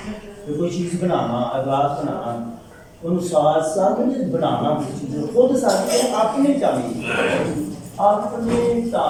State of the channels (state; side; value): identical; both; correlation 1.00